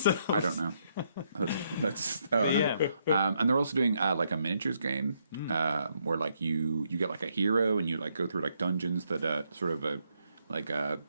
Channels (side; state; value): both; inverted; correlation -0.76